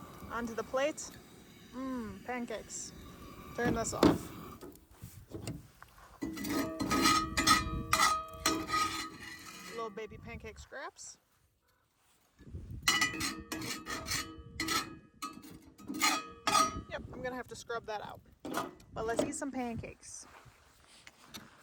onto the plate. Pancakes. Turn this off. Little baby pancake scraps. Yep, I'm gonna have to scrub that out. But let's eat some pancakes.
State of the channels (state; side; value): identical; both; correlation 1.00